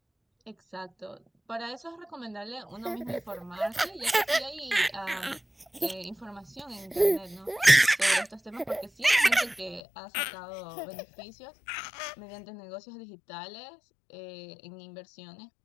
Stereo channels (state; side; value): drops out; right; at 9.8 s